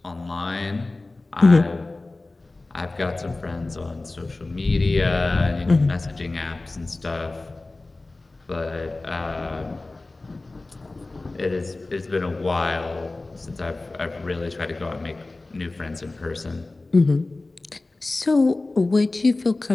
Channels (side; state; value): right; quieter; 3.1 dB